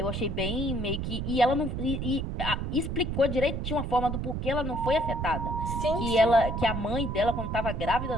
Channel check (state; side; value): noise; right; rumble, 3 dB below the sound